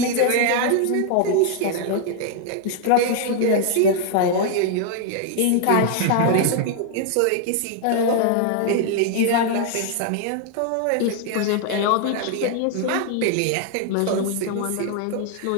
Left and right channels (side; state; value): both; different; correlation 0.00